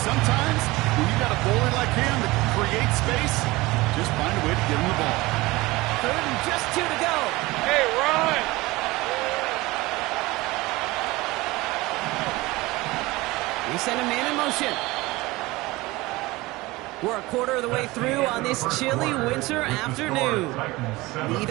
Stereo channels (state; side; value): quieter; left; 20.9 dB